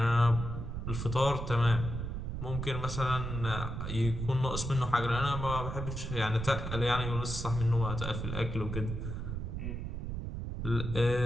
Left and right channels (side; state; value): right; noise; rumble, 5 dB below the sound